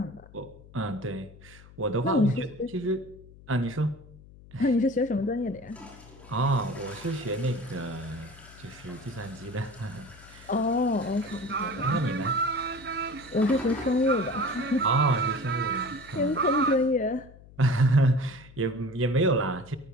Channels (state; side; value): noise; left; hum, 21 dB below the sound